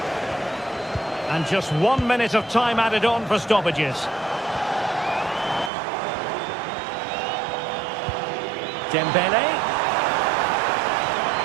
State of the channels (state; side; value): drops out; left; at 5.7 s